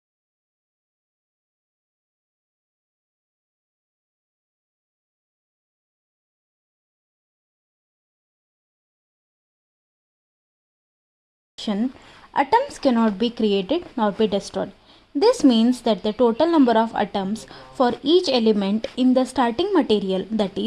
Atoms cannot be created nor be destroyed. This means that the total number of atoms for each element in the starting material, that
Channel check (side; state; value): both; identical; correlation 1.00